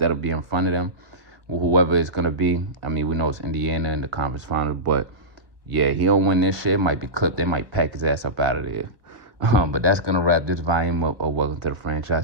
be in front of them, whoever it's going to be. I mean, we know it's Indiana in the conference finals, but yeah, he don't win this shit, it might be clipped. They might pack his ass up out of there. But that's going to wrap this volume up of Welcome to the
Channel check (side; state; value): left; late; 1.2 ms